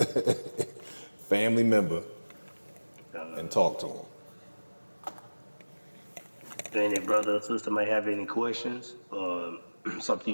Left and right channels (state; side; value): inverted; both; correlation -1.00